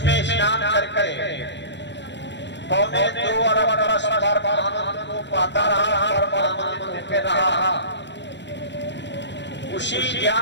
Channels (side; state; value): right; late; 0.52 ms